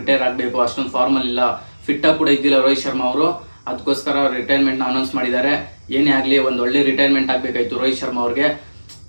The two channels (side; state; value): both; inverted; correlation -1.00